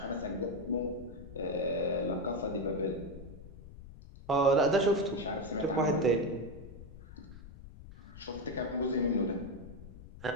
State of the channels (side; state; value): left; noise; rumble, 15 dB below the sound